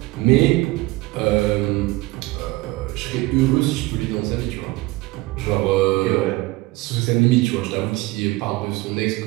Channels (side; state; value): left; quieter; 20.9 dB